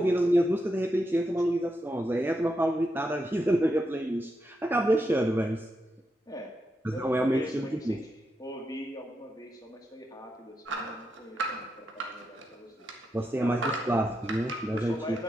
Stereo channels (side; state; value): both; normal; correlation 0.85